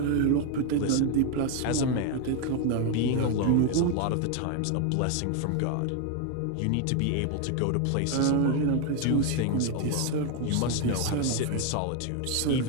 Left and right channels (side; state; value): both; different; correlation 0.01